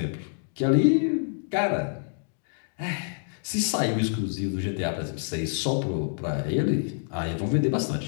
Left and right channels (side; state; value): right; silent; digital silence